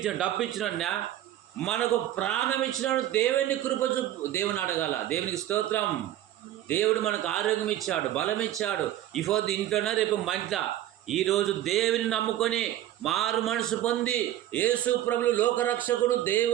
డబ్బు ఇచ్చిన వాళ్ళ, మనకు ప్రాణం ఇచ్చినాడు. దేవుని కృపచు దేవుని అడగాల. దేవునికి స్తోత్రం. దేవుడు మనకు ఆరోగ్యం ఇచ్చాడు, బలం ఇచ్చాడు. ఇఫోద్దు ఇంట్లోనే, రేపు మంట. ఈరోజు దేవుని నమ్ముకొని మారు మనసు పొంది యేసు ప్రభువు లోకరక్షకుడు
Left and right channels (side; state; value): left; quieter; 12.9 dB